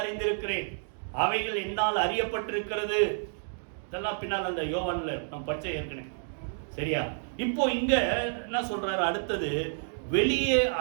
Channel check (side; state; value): left; silent; digital silence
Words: அறிந்திருக்கிறேன், அவைகள் என்னால் அறியப்பட்டிருக்கிறது. இதெல்லாம் பின்னால் அந்த யோவான்ல நம்ம படிச்ச ஏற்கனவே. சரியா? இப்போ இங்க என்ன சொல்றாரு? அடுத்தது, வெளியே